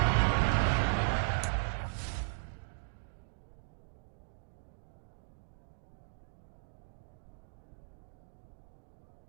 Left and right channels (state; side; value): silent; left; digital silence